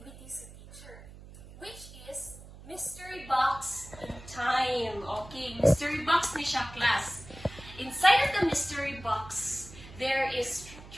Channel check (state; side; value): noise; right; hum, 17 dB below the sound